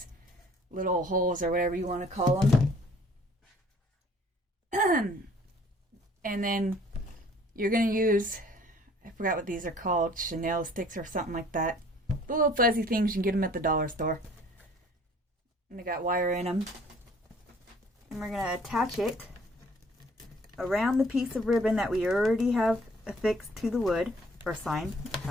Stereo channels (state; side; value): normal; both; correlation 0.55